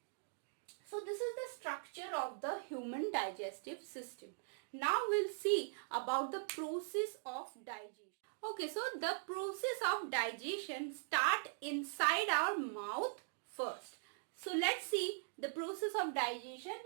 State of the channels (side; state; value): left; silent; digital silence